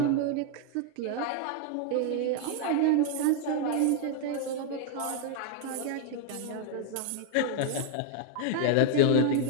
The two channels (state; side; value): different; both; correlation 0.00